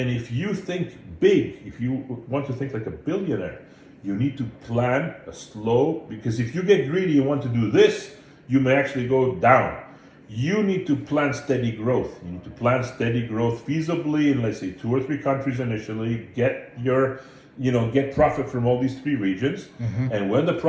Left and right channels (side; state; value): both; identical; correlation 1.00